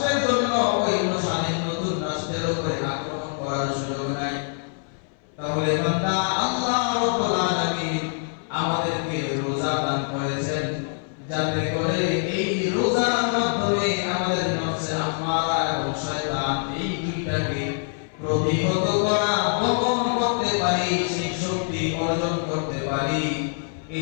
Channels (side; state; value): right; silent; 59 dB below the other